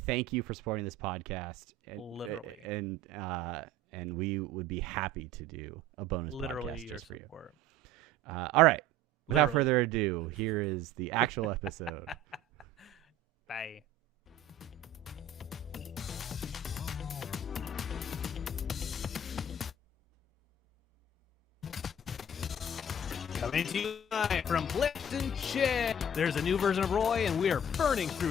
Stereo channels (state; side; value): normal; both; correlation 0.45